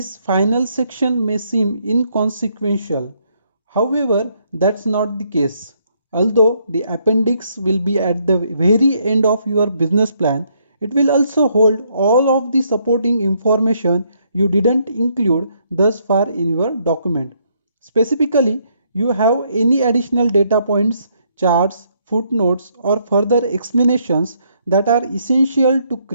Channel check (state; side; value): inverted; both; correlation -0.72